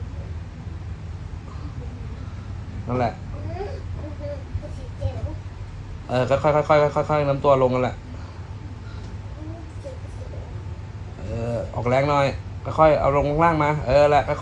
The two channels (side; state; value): both; identical; correlation 1.00